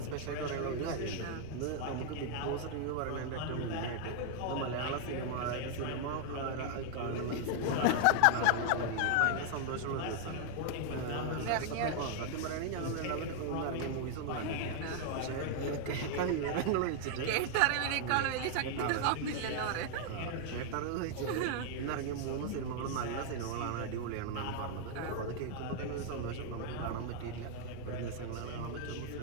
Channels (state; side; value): different; both; correlation 0.00